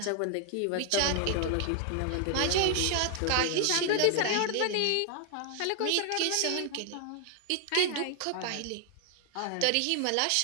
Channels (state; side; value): different; both; correlation 0.00